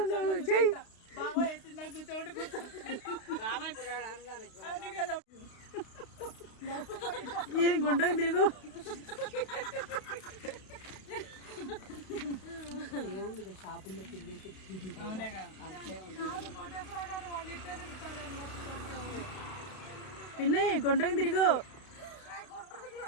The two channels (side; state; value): right; late; 32 ms